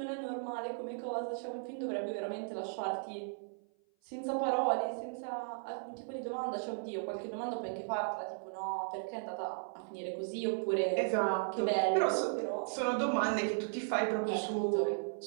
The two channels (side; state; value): left; silent; 54 dB below the other